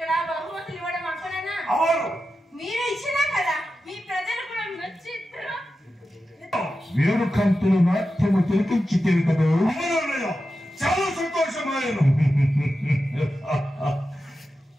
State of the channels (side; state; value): both; normal; correlation 0.91